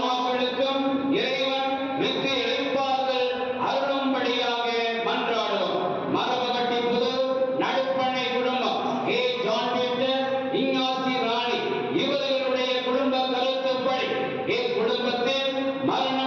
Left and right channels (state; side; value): identical; both; correlation 1.00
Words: இறைவன் மிக்க இழைப்பார்கள் அருளும்படியாக மன்றாடுவோம். மரபகட்டி புதூர் நடுப்பண்ணை குடும்பம் ஏ. ஜான் பீட்டர், இஞ்ஞாசி ராணி இவர்களுடைய குடும்ப கருத்துப்படி இக்குடும்பத்தில்